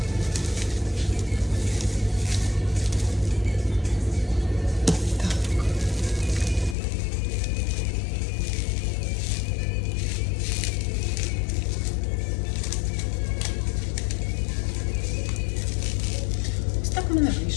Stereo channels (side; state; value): right; drops out; at 6.8 s